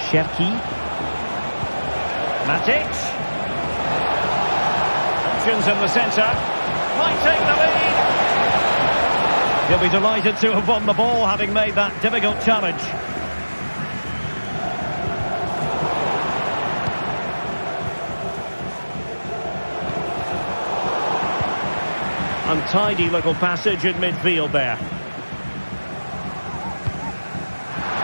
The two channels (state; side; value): inverted; both; correlation -1.00